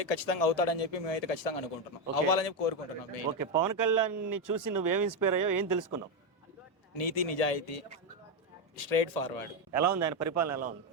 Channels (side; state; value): both; normal; correlation 0.07